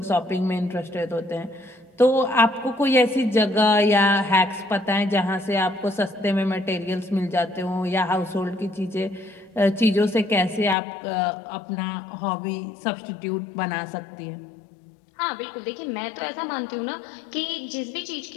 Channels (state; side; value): drops out; right; at 10.8 s